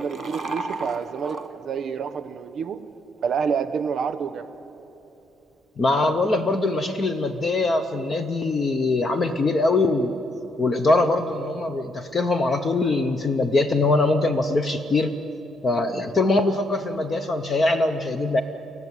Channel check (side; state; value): both; normal; correlation 0.74